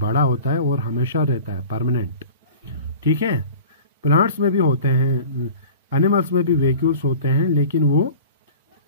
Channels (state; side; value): inverted; both; correlation -0.40